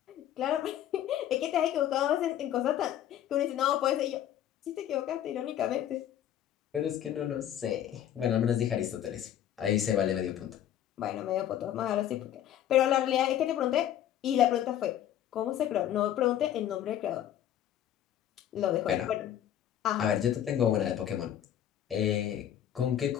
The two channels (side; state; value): right; quieter; 11.0 dB